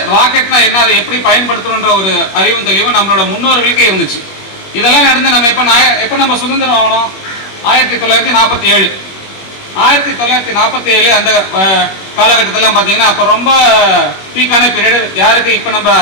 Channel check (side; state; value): right; late; 21 ms